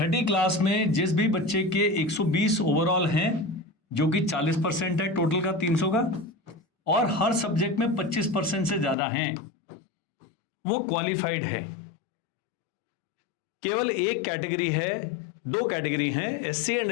क्लास में जिस भी बच्चे के 120 ओवरऑल हैं, जो कि 40% है टोटल का 300 का, और हर सब्जेक्ट में 25% से ज्यादा हैं, वो क्वालिफाइड है। केवल एक कैटेगरी है, दो कैटेगरी हैं, एससी एंड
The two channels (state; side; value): drops out; right; at 9.0 s